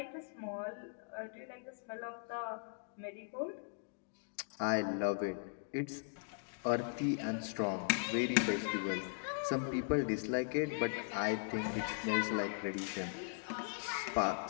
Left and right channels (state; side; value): silent; right; digital silence